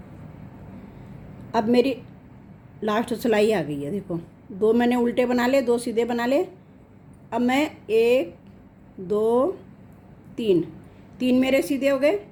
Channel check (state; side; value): identical; both; correlation 1.00